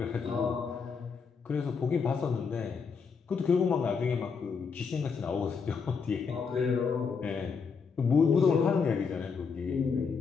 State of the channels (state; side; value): quieter; right; 5.6 dB